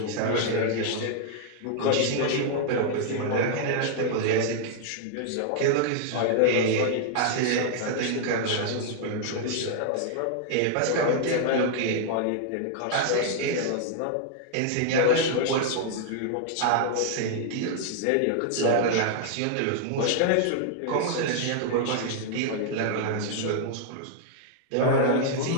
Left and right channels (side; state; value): both; different; correlation -0.01